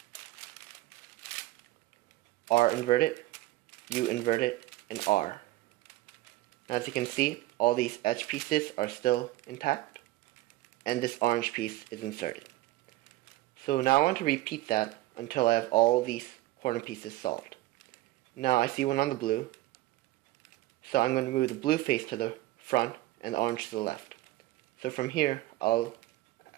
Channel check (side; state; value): left; quieter; 17.7 dB